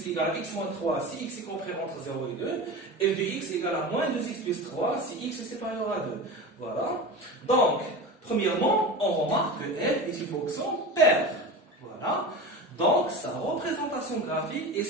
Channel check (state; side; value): normal; both; correlation 0.29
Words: égale à x moins 3 si x est compris entre 0 et 2, f de x égale à moins 2x plus 3 si x est supérieur à 2. Voilà. Donc, premièrement, on remarque que f est une fonction paire. Voilà. Donc, sa représentation graphique est